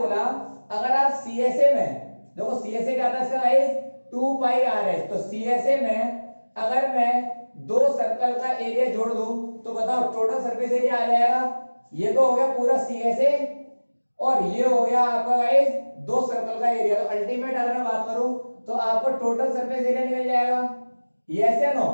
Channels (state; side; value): inverted; both; correlation -1.00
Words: अगर आप CSA में देखो, CSA क्या आता है इसका गाइस, 2πRh। तो CSA में अगर मैं दो सर्कल का एरिया जोड़ दूं तो बताओ टोटल सरफेस एरिया आ जाएगा। ये तो हो गया पूरा CSA, और ये हो गया आपका गाइस दो सर्कल का एरिया। तो अल्टीमेट अगर मैं बात करूं तो आपको टोटल सरफेस एरिया निकल जाएगा, यस या नो।